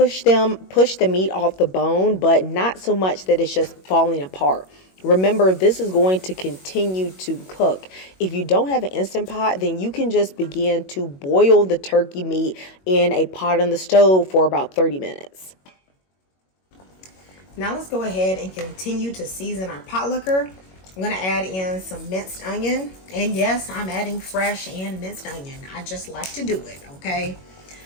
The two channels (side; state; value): right; late; 21 ms